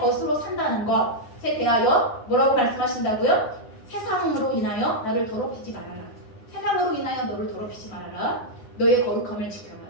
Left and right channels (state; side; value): late; right; 9.7 ms